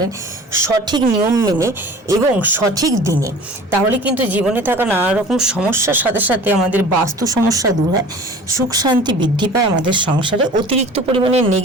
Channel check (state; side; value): normal; both; correlation 0.43